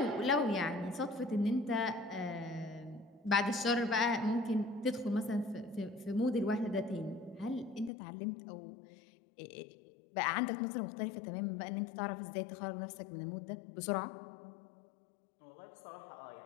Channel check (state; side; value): drops out; right; at 7.9 s